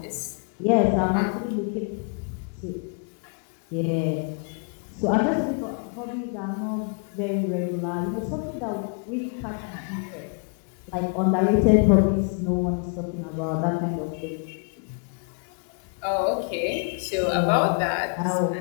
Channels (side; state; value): right; quieter; 38.4 dB